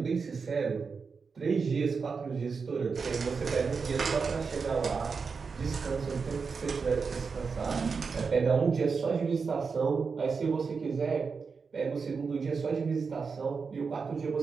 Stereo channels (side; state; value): left; quieter; 5.2 dB